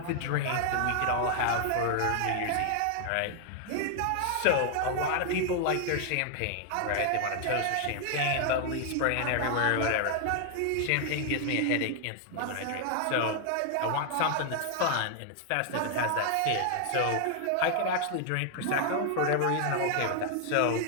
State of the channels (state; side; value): different; both; correlation 0.00